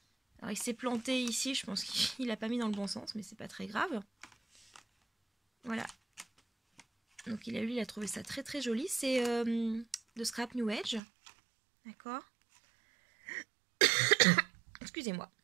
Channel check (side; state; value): left; drops out; at 11.0 s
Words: Alors il s'est planté ici, je pense qu'il n'a pas mis dans le bon sens, mais c'est pas très grave. Voilà. Donc lui, il a trouvé ça très très joli. C'est de Scrap New Edge. D'accord. Excusez-moi.